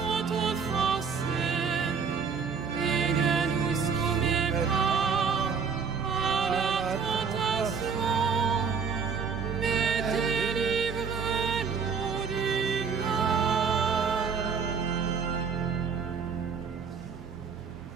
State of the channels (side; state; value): left; quieter; 6.0 dB